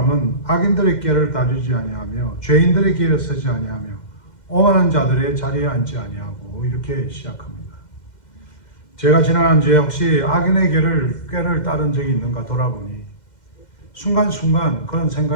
악인들의 길을 따르지 아니하며 죄인들의 길에 서지 아니하며 오만한 자들의 자리에 앉지 아니하고 이렇게 시작합니다. 제가 지난 주에 혹시 악인의 꾀를 따른 적이 있는가 돌아보니 순간순간 그런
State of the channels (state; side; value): late; right; 2.1 ms